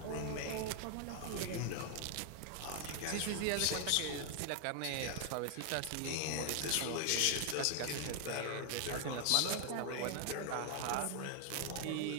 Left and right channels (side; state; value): both; different; correlation 0.00